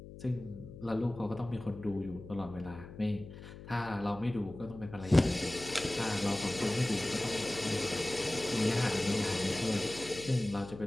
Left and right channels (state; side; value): noise; left; hum, 14 dB below the sound